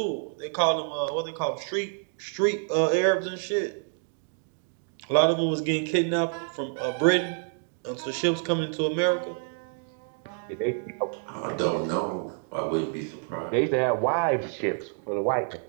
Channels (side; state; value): left; silent; 59 dB below the other